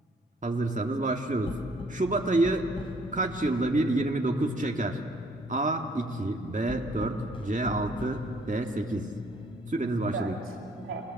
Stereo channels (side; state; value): both; normal; correlation 0.62